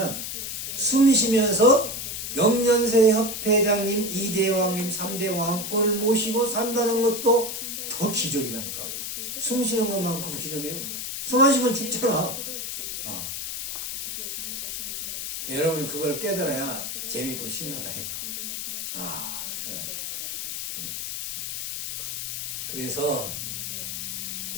숨 쉬면서 영년세 협회장님, 2대 왕님, 3대 왕권을 모시고 산다는 것도 더 기적이라니까. 숨 쉬는 것만큼 기적이에요. 숨 안 쉬면 죽잖아. 여러분 그걸 깨달아야 재밌고 신나다니까. 그래서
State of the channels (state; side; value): noise; left; hiss, 5 dB below the sound